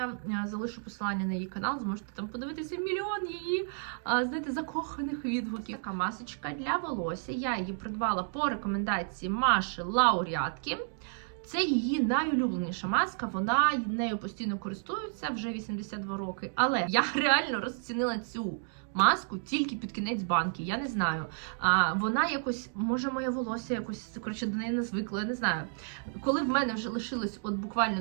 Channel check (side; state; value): left; silent; digital silence